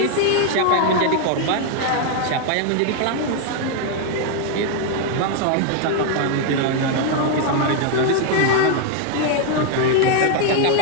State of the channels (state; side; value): different; both; correlation 0.00